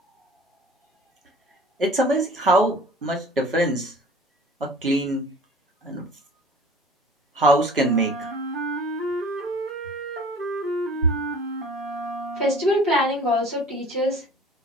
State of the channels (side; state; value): both; normal; correlation 0.45